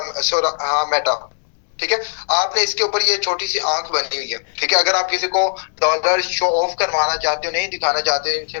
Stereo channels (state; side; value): silent; right; digital silence